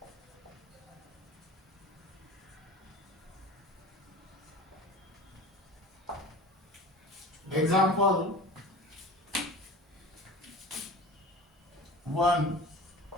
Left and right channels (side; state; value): both; normal; correlation 0.38